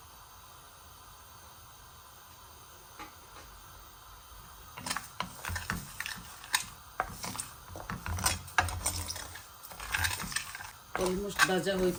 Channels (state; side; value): identical; both; correlation 1.00